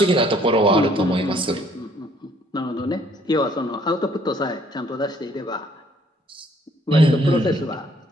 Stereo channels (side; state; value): both; normal; correlation 0.63